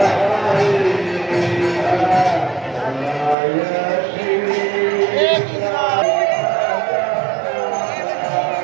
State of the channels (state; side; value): drops out; left; at 3.4 s